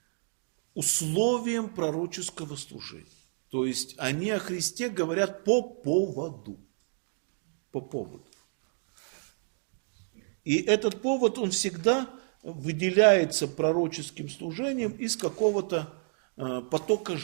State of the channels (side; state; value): left; silent; 58 dB below the other